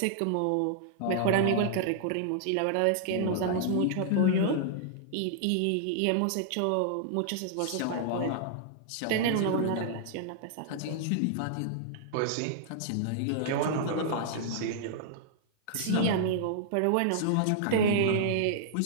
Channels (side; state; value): both; different; correlation -0.01